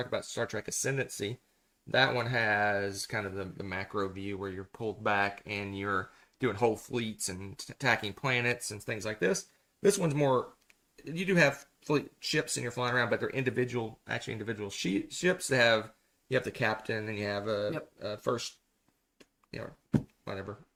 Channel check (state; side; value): identical; both; correlation 1.00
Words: about Star Trek Ascendancy. That one has kind of the macro view where you're pulled back and you're doing whole fleets and attacking planets and things like this. This one's more, you do have fleet ships and you're flying around, but they're individual ships that have, you have the captain and you have a first, whatever,